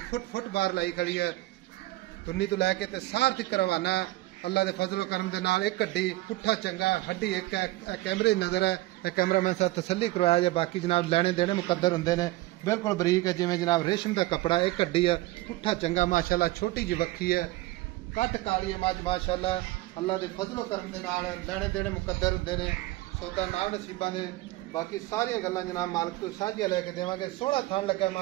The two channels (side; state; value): left; quieter; 18.4 dB